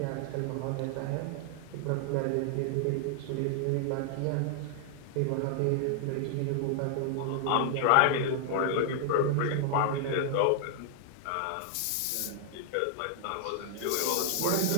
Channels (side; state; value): both; different; correlation 0.00